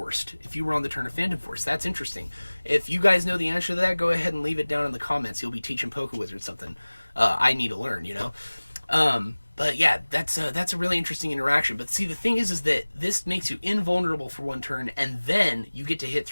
if you were on the turn of Phantom Force. That's interesting. If you guys know the answer to that, go ahead and leave it down in the comments. You'll be teaching Pokiwizard something I need to learn, you know? But yeah, that's a really interesting interaction. But see, the thing is that this makes you invulnerable for 1 turn, and then you get to hit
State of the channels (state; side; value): inverted; both; correlation -1.00